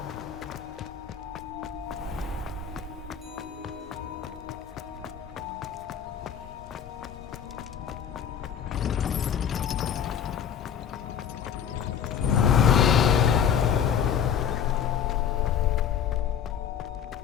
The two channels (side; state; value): right; quieter; 8.4 dB